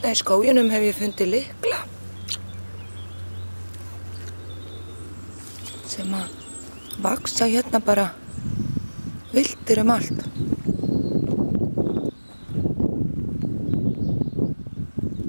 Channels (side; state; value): both; inverted; correlation -1.00